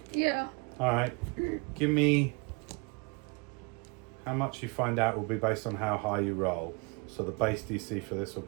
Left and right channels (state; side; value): quieter; left; 30.9 dB